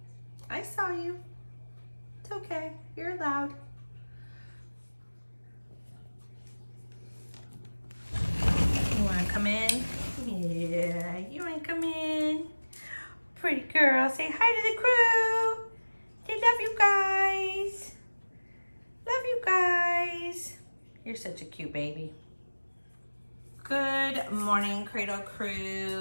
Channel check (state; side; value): inverted; both; correlation -1.00